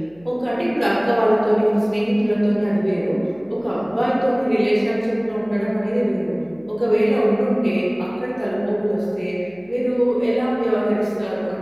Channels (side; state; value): left; noise; hum, 28 dB below the sound